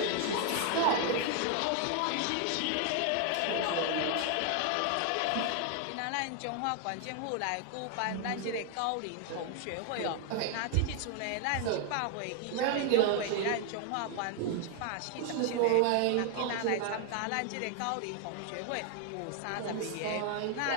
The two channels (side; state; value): both; different; correlation 0.00